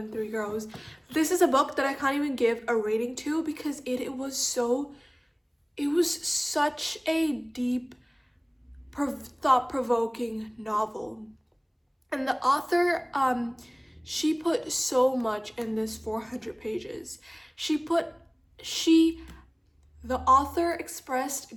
Tree Grows. This is a book that I can't even give a rating to because it was such a deep, thought-provoking novel. And the author, she put so much in this 400 pages. The author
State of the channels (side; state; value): both; identical; correlation 1.00